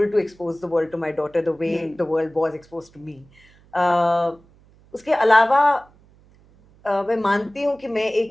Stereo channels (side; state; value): right; noise; hum, 29 dB below the sound